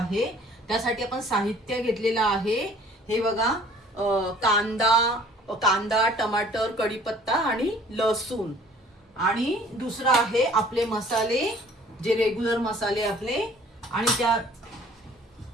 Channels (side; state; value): both; normal; correlation 0.53